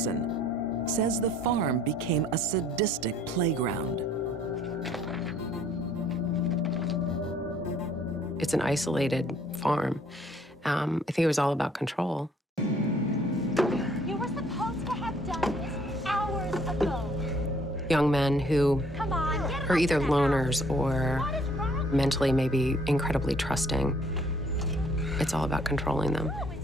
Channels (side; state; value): both; normal; correlation 0.61